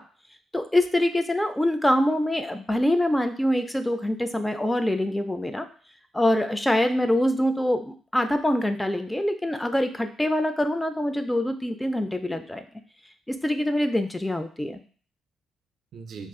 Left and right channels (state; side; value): normal; both; correlation 0.94